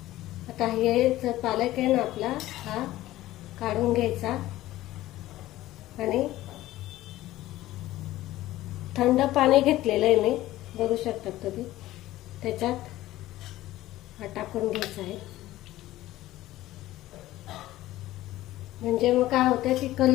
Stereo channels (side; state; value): right; quieter; 15.8 dB